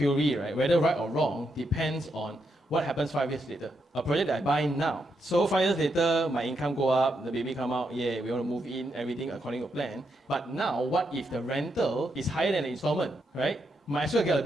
right, whether right or wrong, depends on What happens 5 years later? A project that I buy now. So 5 years later, my income go up, the baby come out, yeah, we want to move in, everything according to plan. But now, what if the rental is higher than the installment, right? Might as well get a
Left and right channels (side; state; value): both; normal; correlation 0.81